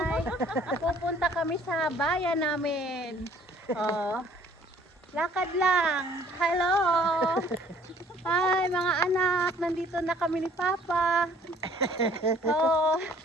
Pupunta kami sa bayan namin. Oh. Lakad lang. Hello! Hi mga anak, nandito na kami ni Papa. Oh.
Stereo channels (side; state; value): both; normal; correlation 0.57